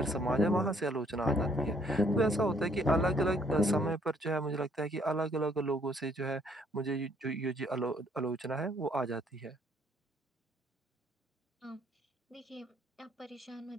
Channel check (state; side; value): normal; both; correlation 0.65